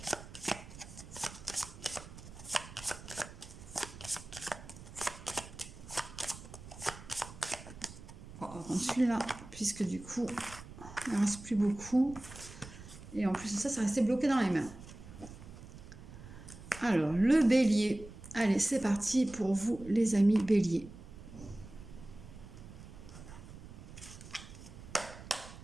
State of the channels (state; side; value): noise; right; rumble, 15 dB below the sound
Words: ? On va prendre celui-là, puisque du coup, il ne reste plus beaucoup. Et en plus de ça, ça restait bloqué dans les mains. Alors, le bélier. Allez, c'est parti pour vous, les amis béliers.